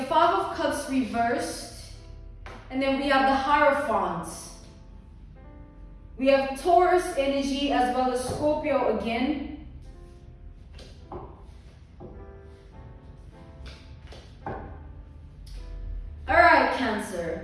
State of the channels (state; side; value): identical; both; correlation 1.00